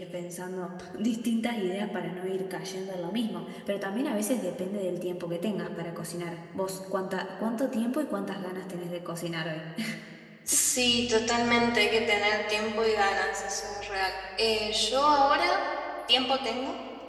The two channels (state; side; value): identical; both; correlation 1.00